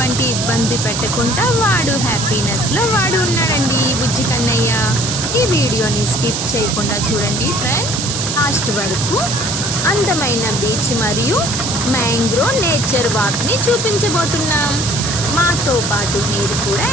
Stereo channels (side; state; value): right; noise; hiss, 3 dB below the sound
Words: ఇబ్బంది పెట్టకుండా వాడు హ్యాపీనెస్లో వాడు ఉన్నాడండి. బుజ్జి కన్నయ్య. ఈ వీడియోని స్కిప్ చేయకుండా చూడండి ఫ్రెండ్స్, లాస్ట్ వరకు. అందమైన బీచ్ మరియు మ్యాంగ్రోవ్ నేచర్ వాక్ని చూపించబోతున్నాం. మాతో పాటు మీరు కూడా